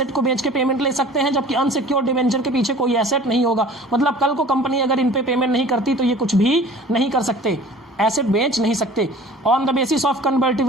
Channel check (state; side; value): normal; both; correlation 0.45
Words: को बेच के पेमेंट ले सकते हैं, जबकि अनसिक्योर्ड डिवेंचर के पीछे कोई एसेट नहीं होगा। मतलब कल को कंपनी अगर इन पे पेमेंट नहीं करती तो ये कुछ भी नहीं कर सकते, एसेट बेच नहीं सकते। On the basis of